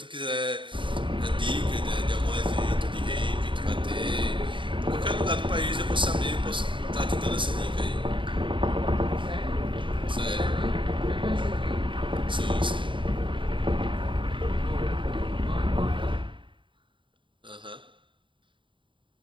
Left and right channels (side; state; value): left; late; 0.24 ms